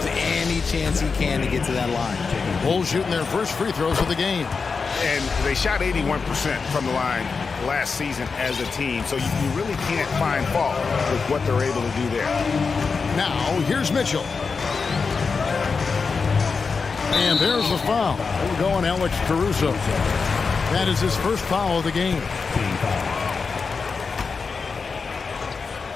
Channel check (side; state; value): right; quieter; 4.9 dB